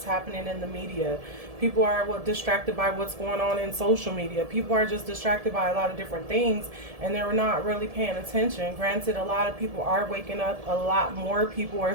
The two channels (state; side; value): late; left; 1.7 ms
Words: happening in the media. People are distracted by what's going on in social media. People are just distracted by a lot of different things and they're not really paying attention. Granted, a lot of people are waking up. A lot more people are